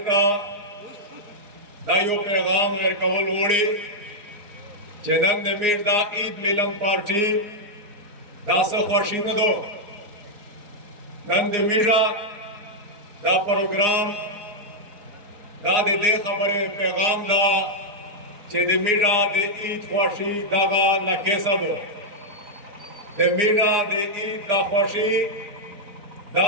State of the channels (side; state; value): left; late; 4.8 ms